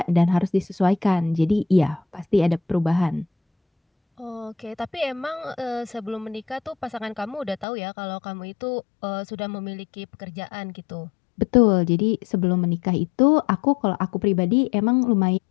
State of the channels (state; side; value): drops out; right; at 7.7 s